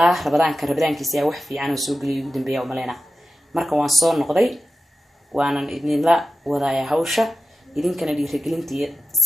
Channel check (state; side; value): normal; both; correlation 0.93